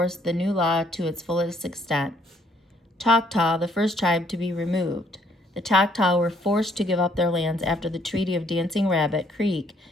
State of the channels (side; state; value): both; normal; correlation 0.66